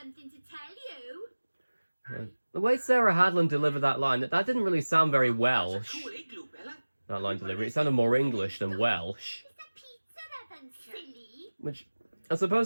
to tell you. Yeah. The way Sarah Hadland delivered that line, that didn't really sound very Welsh. Cool igloo, Bella. That line delivery, it sounded more English than Welsh. Is the pizza ribbon silly? Which I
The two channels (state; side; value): inverted; both; correlation -1.00